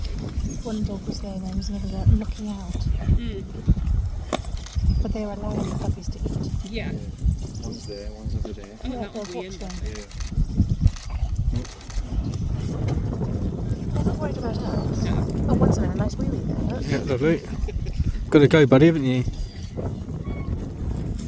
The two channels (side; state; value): both; identical; correlation 1.00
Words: one dog was there and there was another there looking out. Mm. But they were allowing the puppies to eat. Yeah. One's there, one's over there. Oh, Yeah, that was they're the end. watching. Yeah. I'm not worried about us. No. Oh, one's having a nice wee wee there. Look. Yeah, lovely. Got to go, buddy, haven't you?